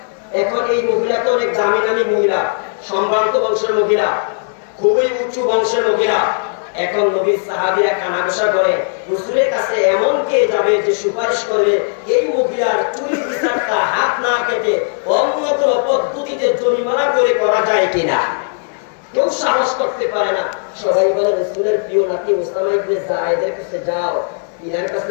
এখন এই মহিলা তো অনেক দামি দামি মহিলা, সম্ভ্রান্ত বংশের মহিলা, খুবই উঁচু বংশের মহিলা। এখন নবীর সাহাবীরা কানাঘুষা করে হুজুরের কাছে এমন কে যাবে যে সুপারিশ করবে এই মহিলার চুরির বিচারটা হাত না কেটে অন্য কোনো পদ্ধতিতে জরিমানা করে করা যায় কিনা। কেউ সাহস করতে পারে না। সবাই বলে রাসূলের প্রিয় নাতি ওসামা ইবনে যায়েদের কাছে যাও, ইনার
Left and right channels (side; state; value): right; silent; digital silence